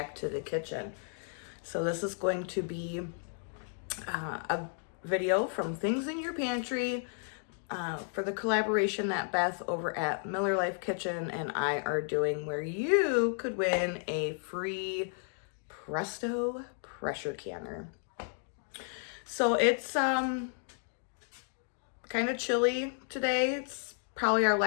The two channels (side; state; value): right; silent; 56 dB below the other